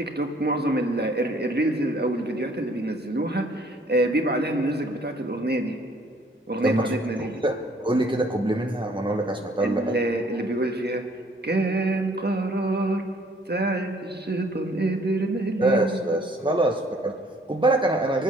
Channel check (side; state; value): both; normal; correlation 0.60